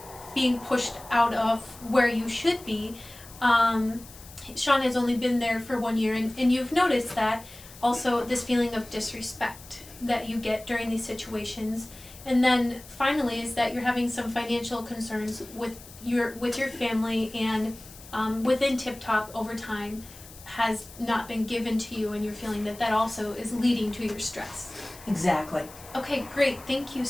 being pushed out of where you should be. Sean has only been there for 1 year, and you've noticed that also this feeling of disrespect that you get during these situations. And then finally is that you're having some financial concerns with your family, and within Tip Top overtime has not been given to you, and you're feeling that also is leading to your stress. Exactly. Okay, great, thank you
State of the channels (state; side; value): noise; left; hiss, 19 dB below the sound